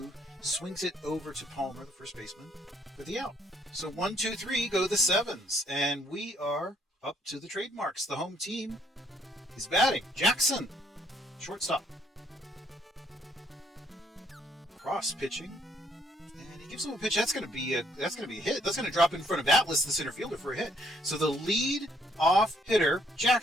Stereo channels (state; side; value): normal; both; correlation 0.68